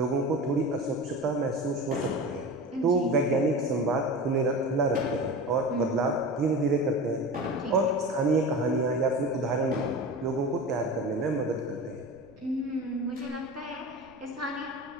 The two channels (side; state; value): right; noise; rumble, 28 dB below the sound